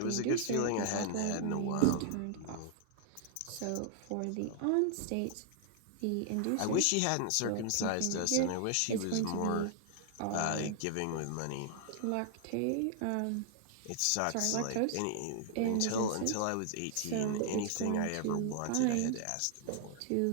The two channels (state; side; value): different; both; correlation 0.00